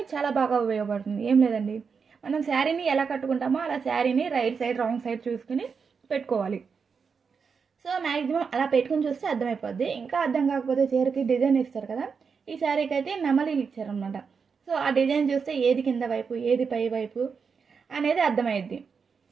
చాలా బాగా ఉపయోగపడుతుంది. ఏం లేదండి, మనం శారీని ఎలా కట్టుకుంటామో అలా శారీని రైట్ సైడ్ రాంగ్ సైడ్ చూసుకుని పెట్టుకోవాలి. సో మ్యాక్సిమం అలా పెట్టుకుని చూస్తే అర్థమైపోద్ది. ఇంకా అర్థం కాకపోతే చీరకి డిజైన్ ఇస్తారు కదా, ఈ శారీకి అయితే నెమలీలు ఇచ్చారనమాట. సో ఆ డిజైన్ చూస్తే ఏది కింద వైపు ఏది పై వైపు అనేది అర్థమైద్ది.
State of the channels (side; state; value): left; quieter; 5.7 dB